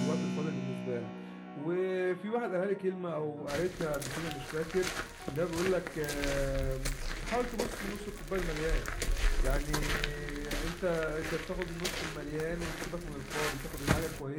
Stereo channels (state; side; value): identical; both; correlation 1.00